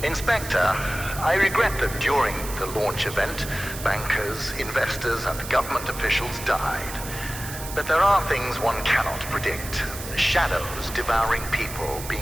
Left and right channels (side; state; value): right; noise; hiss, 10 dB below the sound